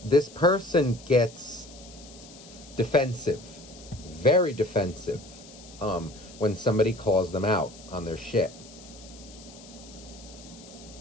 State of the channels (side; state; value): left; noise; hiss, 20 dB below the sound